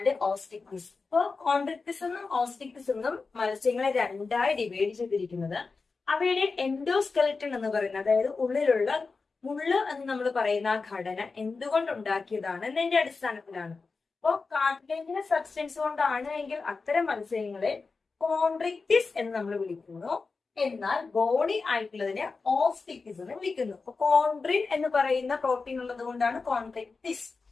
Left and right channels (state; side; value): quieter; right; 4.3 dB